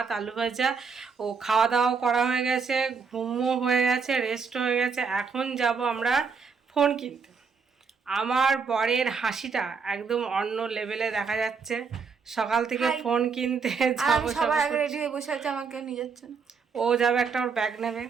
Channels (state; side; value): quieter; left; 5.5 dB